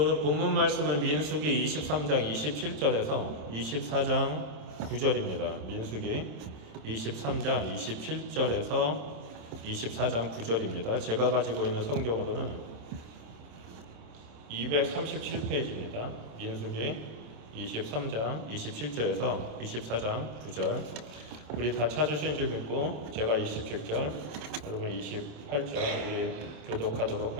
본문 말씀은 민수기 23장 27절에서 24장 9절입니다. 민수기 23장 27절에서 24장 9절입니다. 제가 가지고 있는 성경으로는 237페이지입니다. 민수기 23장 27절에서 24장 9절. 우리 다 찾으신 줄 믿고 제가 27절, 여러분 28절 우리 교독하도록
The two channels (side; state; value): left; late; 26 ms